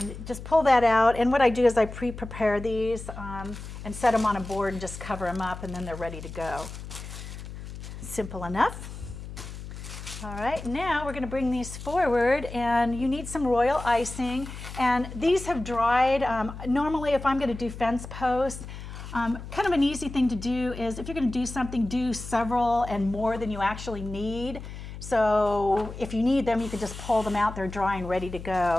just pull that out, and what I do is I pre-prepare these and set them on a board and just cover them up, and then they're ready to go. Simple enough. All right, now we're going to bring these forward, and you need some royal icing, and these have dried. Normally if I'm going to do fence posts, kind of an easy thing to do is if you're going to do something, do several and more than you actually need. So if you need them, you can just pull them out. They're dry and ready to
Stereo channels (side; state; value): left; noise; hum, 11 dB below the sound